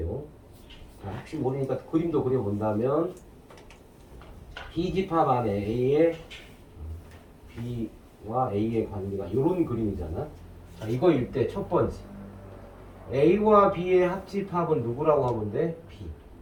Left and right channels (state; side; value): identical; both; correlation 1.00